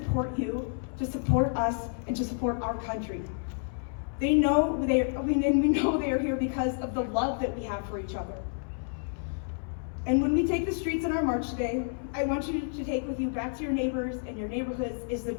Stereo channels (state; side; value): silent; right; 58 dB below the other